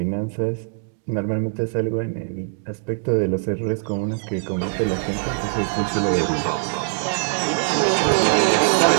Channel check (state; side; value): silent; left; digital silence